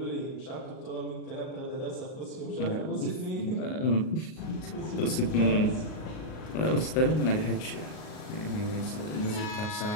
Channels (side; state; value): right; late; 38 ms